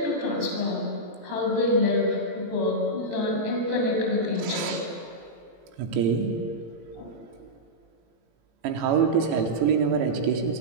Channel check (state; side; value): late; left; 18 ms